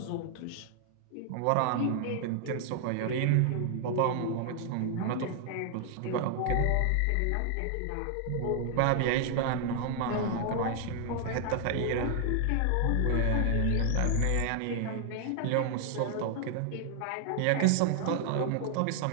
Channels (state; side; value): different; both; correlation 0.00